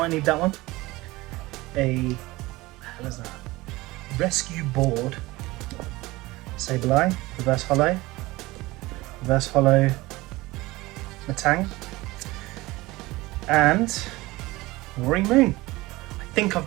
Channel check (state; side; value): quieter; left; 20.3 dB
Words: need that one. A, what the hell is that? Rescue Board, Sableye, Reverse Hollow, Matang, and Roaring Moon. I think I've